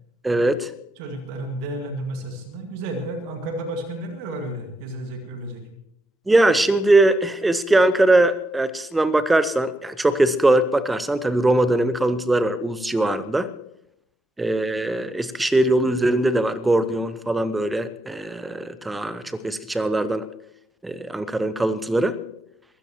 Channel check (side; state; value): both; normal; correlation 0.83